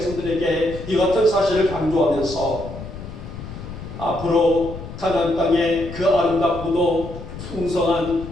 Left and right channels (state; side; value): noise; left; rumble, 11 dB below the sound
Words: 이 같은 사실을 강조하면서 앞으로 가나안 땅의 그 아름답고도